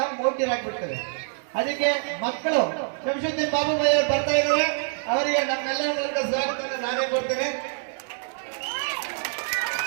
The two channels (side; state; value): left; silent; 58 dB below the other